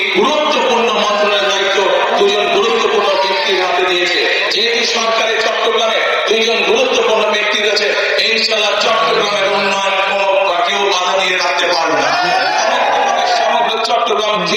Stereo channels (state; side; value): identical; both; correlation 1.00